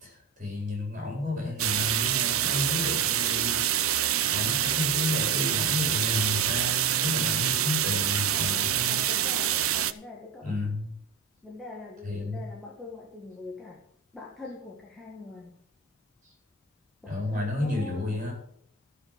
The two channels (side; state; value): left; quieter; 5.4 dB